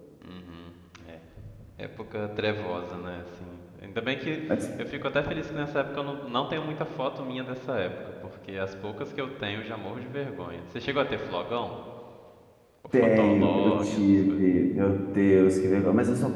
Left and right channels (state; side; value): identical; both; correlation 1.00